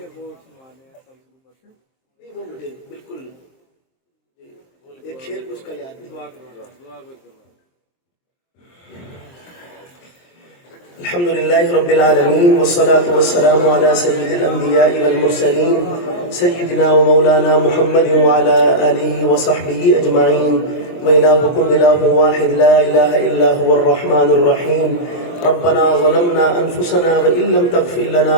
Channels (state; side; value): late; right; 23 ms